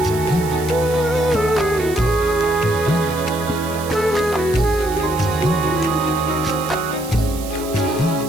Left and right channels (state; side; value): noise; right; hiss, 14 dB below the sound